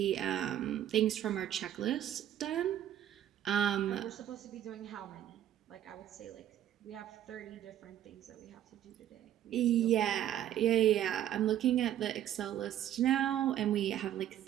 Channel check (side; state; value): left; quieter; 11.3 dB